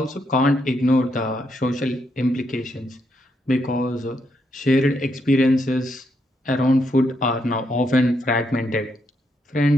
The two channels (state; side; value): normal; both; correlation 0.78